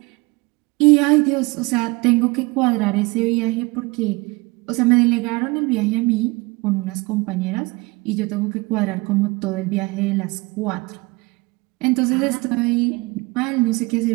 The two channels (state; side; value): quieter; left; 24.7 dB